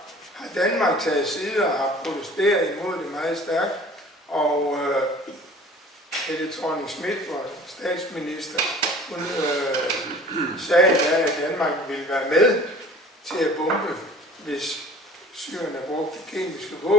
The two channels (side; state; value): both; normal; correlation 0.46